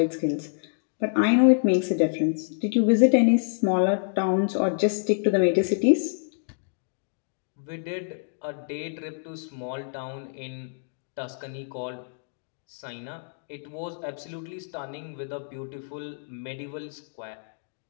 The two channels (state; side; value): silent; right; digital silence